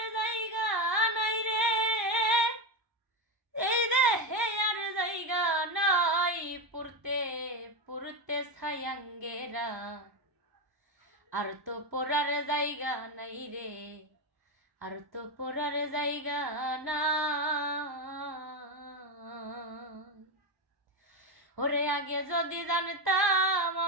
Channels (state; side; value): late; left; 1.0 ms